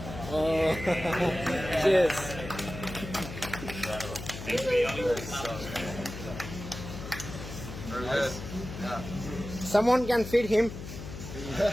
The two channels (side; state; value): left; noise; hum, 10 dB below the sound